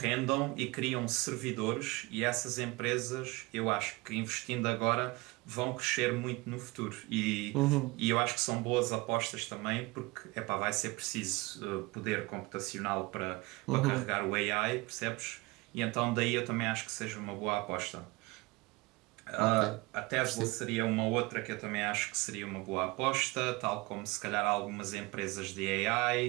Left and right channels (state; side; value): quieter; left; 23.5 dB